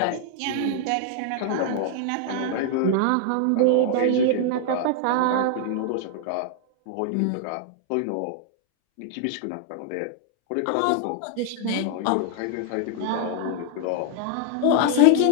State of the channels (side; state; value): both; different; correlation 0.00